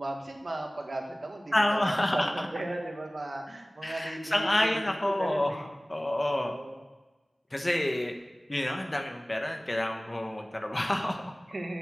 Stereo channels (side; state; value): both; normal; correlation 0.98